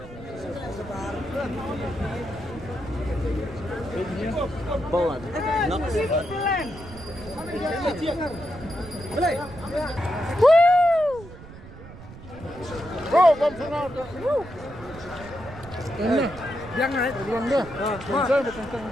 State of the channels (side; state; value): right; noise; rumble, 16 dB below the sound